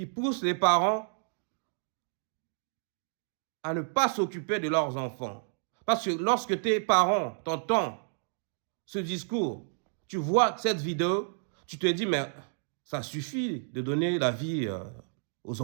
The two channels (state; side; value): silent; left; digital silence